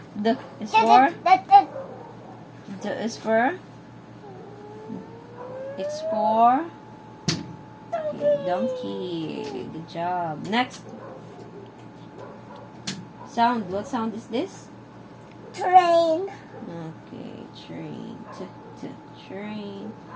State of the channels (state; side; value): identical; both; correlation 1.00